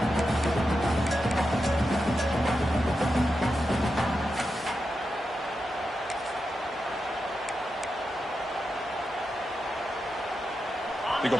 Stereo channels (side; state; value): both; normal; correlation 0.88